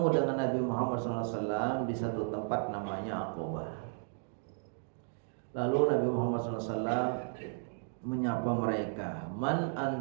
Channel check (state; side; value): silent; left; digital silence